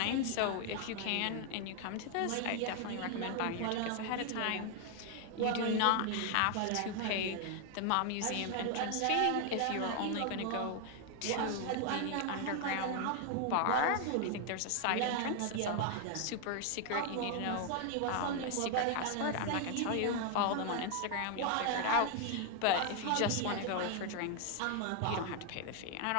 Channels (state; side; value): different; both; correlation 0.00